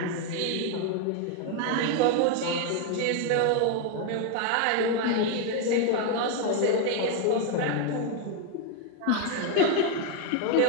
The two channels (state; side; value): different; both; correlation 0.01